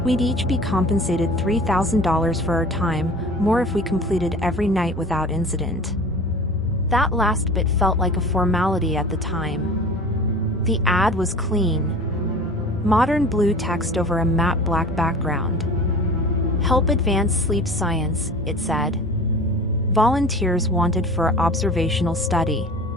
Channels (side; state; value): both; normal; correlation 0.39